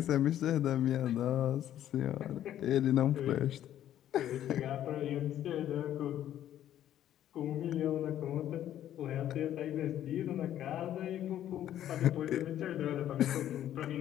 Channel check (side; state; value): right; quieter; 11.6 dB